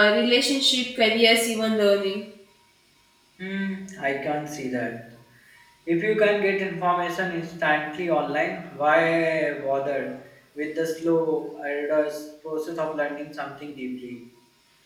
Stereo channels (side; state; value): both; identical; correlation 1.00